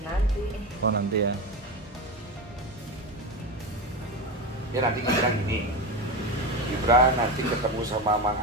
Nanti Oh nanti ya. Ya nanti Gibran gini. Gibran nanti ketemu sama Mang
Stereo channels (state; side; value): normal; both; correlation 0.20